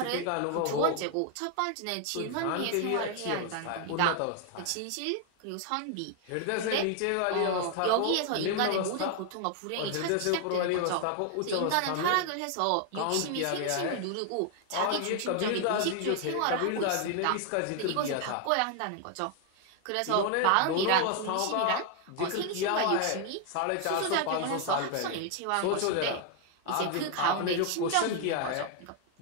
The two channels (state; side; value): different; both; correlation 0.00